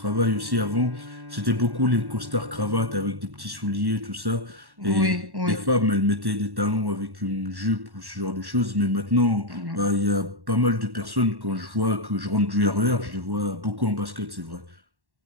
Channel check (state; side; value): late; left; 1.1 ms